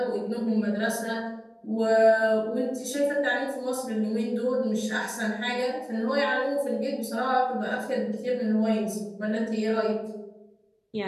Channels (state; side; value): identical; both; correlation 1.00